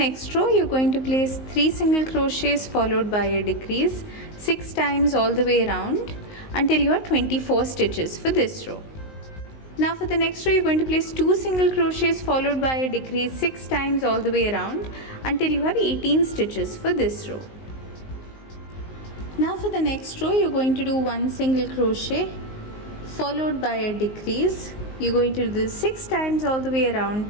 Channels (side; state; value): right; late; 19 ms